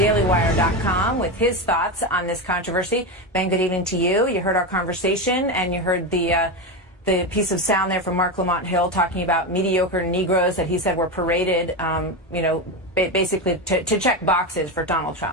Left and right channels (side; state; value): both; normal; correlation 0.15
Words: with his thoughts on this controversy. Ben, good evening to you. You heard our conversation, and you heard the piece of sound there from Mark Lamont Hill talking about mediocre Negroes that he said were paraded, basically to check boxes for Donald